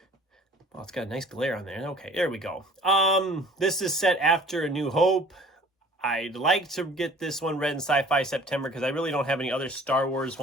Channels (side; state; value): both; normal; correlation 0.50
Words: Oh, it's got a nice glare on there. Okay, there we go. This is set after A New Hope. I'd like to get this one read in Sci-Fi September because I really don't have any other Star Wars